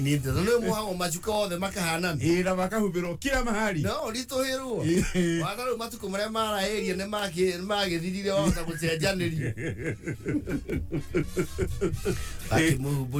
ndo muhango machuka othe makahana ira makahubiro kila mahali no litoherwo wakaru matuko mare mara area ne magithirire wota gucenjaniri ati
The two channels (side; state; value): both; identical; correlation 1.00